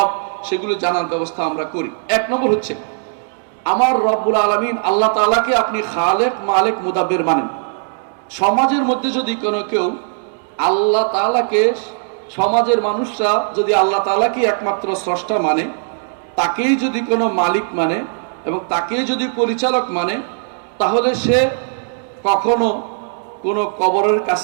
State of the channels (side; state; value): left; silent; digital silence